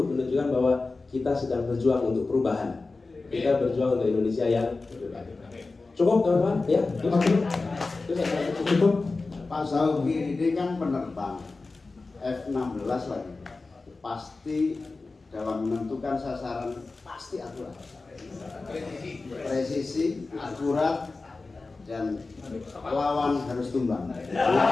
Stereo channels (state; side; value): quieter; right; 3.7 dB